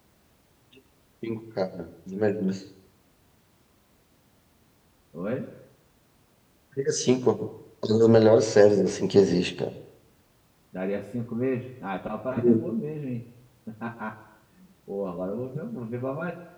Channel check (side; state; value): both; identical; correlation 1.00